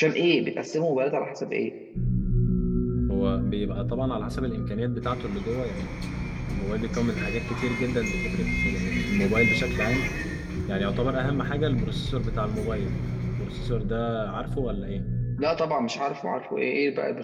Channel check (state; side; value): identical; both; correlation 1.00